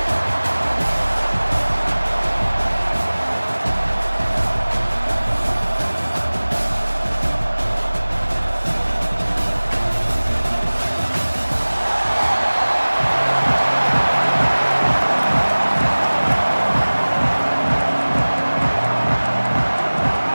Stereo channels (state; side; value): inverted; both; correlation -1.00